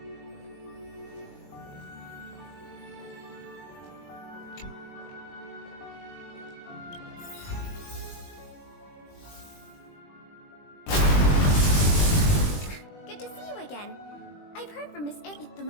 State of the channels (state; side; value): late; right; 20 ms